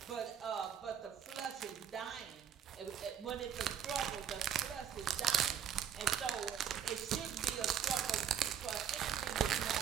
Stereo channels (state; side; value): quieter; left; 8.9 dB